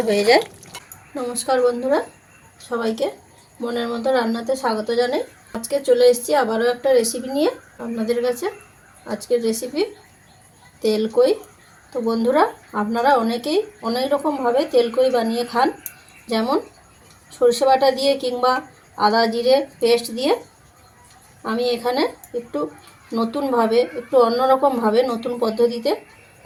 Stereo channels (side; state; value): both; identical; correlation 1.00